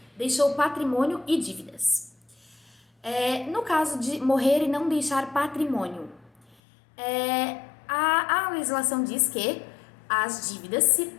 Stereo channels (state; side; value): drops out; right; at 6.6 s